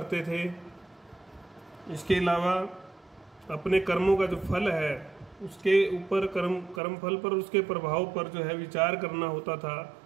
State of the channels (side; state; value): left; drops out; at 6.8 s